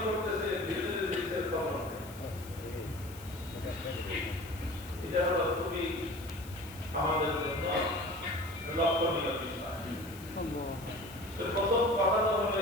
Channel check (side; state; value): left; noise; hiss, 19 dB below the sound